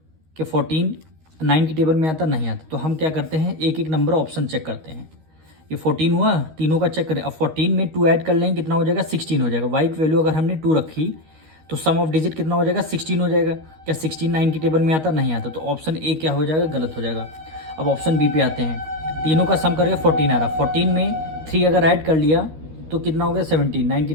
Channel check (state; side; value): late; left; 13 ms